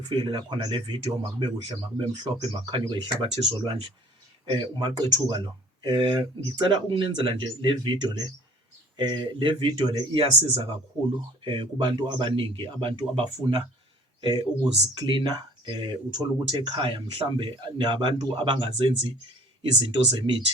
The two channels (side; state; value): both; normal; correlation 0.51